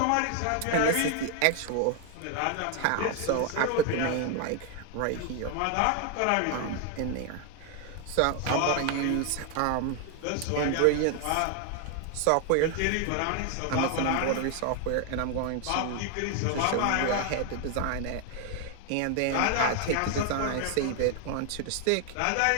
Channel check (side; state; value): both; different; correlation 0.00